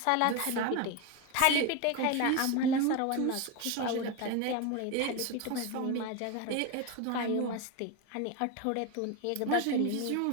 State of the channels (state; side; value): different; both; correlation 0.03